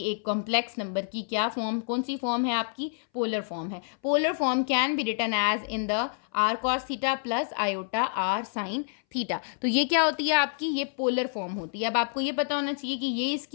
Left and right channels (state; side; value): silent; right; 59 dB below the other